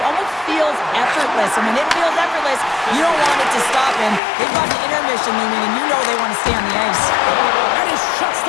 almost feels effortless. And when it feels effortless, you don't want it to stop. And they've got the intermission looming, and you know they want to stay on the ice. And he shuts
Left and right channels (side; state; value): right; drops out; at 4.2 s